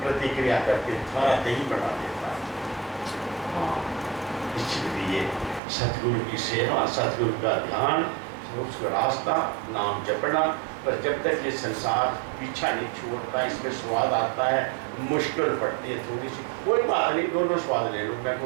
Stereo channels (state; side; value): drops out; left; at 5.6 s